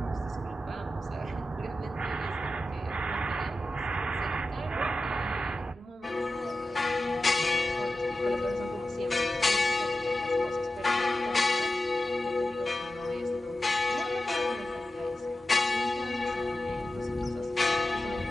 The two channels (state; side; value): normal; both; correlation 0.93